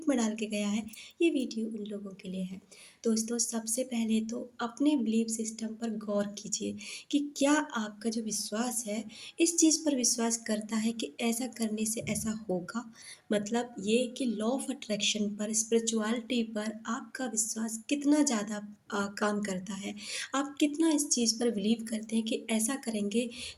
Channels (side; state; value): both; identical; correlation 1.00